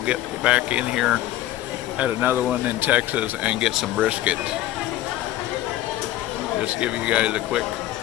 get back in here at another one in Texas and get some brisket. Just give you guys a quick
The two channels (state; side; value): quieter; right; 14.3 dB